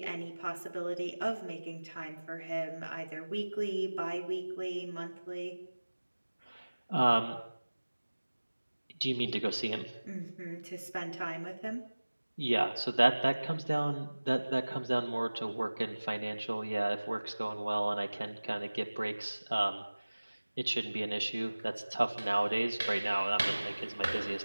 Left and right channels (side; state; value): both; inverted; correlation -1.00